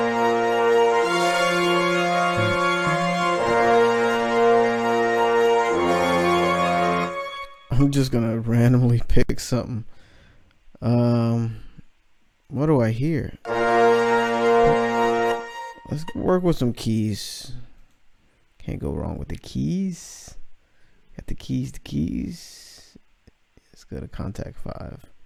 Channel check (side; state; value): both; identical; correlation 1.00